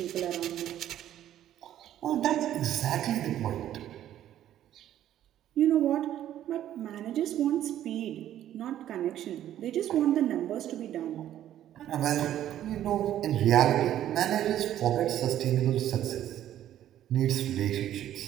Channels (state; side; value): quieter; left; 11.8 dB